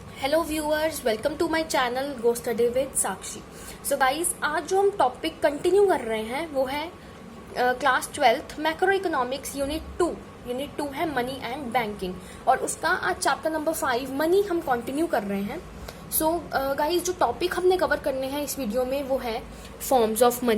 Hello viewers, welcome to my channel go study with Sakshi. So guys, आज जो हम topic continue कर रहे हैं वो है class 12th macro economics unit 2 है मनी एंड बैंकिंग, और उसका आज चैप्टर नंबर 5 मनी हम कंटिन्यू कर रहे हैं। सो गाइस, जो टॉपिक हमने कवर करने हैं इस वीडियो में वो है फॉर्म्स ऑफ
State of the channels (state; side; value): identical; both; correlation 1.00